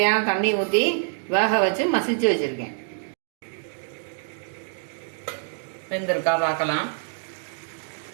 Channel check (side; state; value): left; silent; digital silence